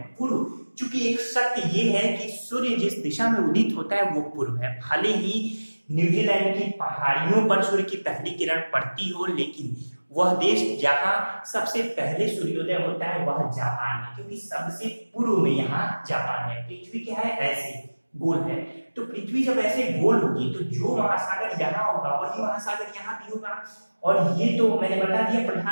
पूर्व, चूंकि एक सत्य ये है कि सूर्य जिस दिशा में उदित होता है वो पूर्व है। भले ही न्यूजीलैंड की पहाड़ियों पर सूर्य की पहली किरण पड़ती हो, लेकिन वह देश जहां सबसे पहले सूर्योदय होता है वह जापान है, क्योंकि सबसे पूर्व में यहाँ जापान है। पृथ्वी क्या है, ऐसे गोल है। तो पृथ्वी जब ऐसे गोल होगी तो जो महासागर यहाँ होगा वही महासागर यहाँ भी होगा। और ये तो मैंने बता दिया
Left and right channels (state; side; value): inverted; both; correlation -1.00